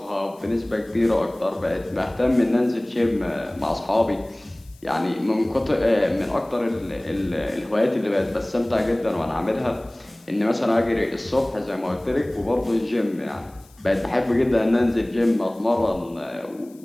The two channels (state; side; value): noise; left; hiss, 28 dB below the sound